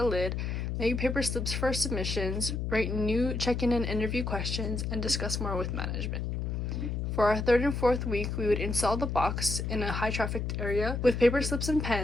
lid, make paper slips for submissions, write new check-in and interview questions, and discuss more with management. For our third and fourth week, we would install the box in a high-trafficked area with paper slips and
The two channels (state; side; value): noise; left; hum, 2 dB below the sound